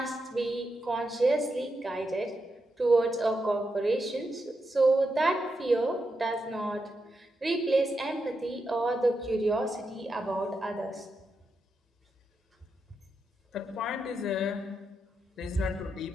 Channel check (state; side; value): normal; both; correlation 0.85